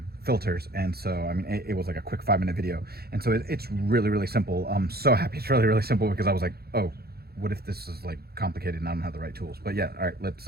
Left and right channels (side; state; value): left; late; 0.46 ms